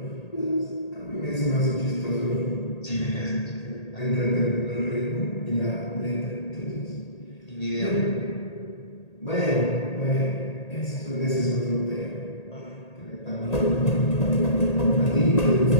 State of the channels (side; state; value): right; late; 1.8 ms